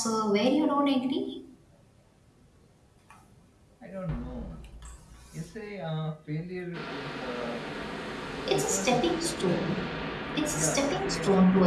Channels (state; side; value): identical; both; correlation 1.00